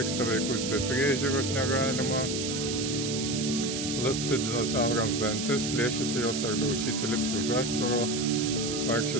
vaikus be priežiūros negalima, lipti dinozaurams dantis, plėšyti jos ar daužyti, lipti už aštvaro,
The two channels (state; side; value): noise; right; hiss, 4 dB below the sound